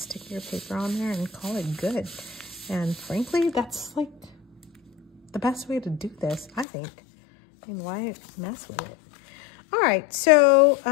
your paper on there and call it good. And frankly, that's like the best way to do this, I think. I mean, why mess with it? All right, so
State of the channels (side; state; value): right; drops out; at 6.7 s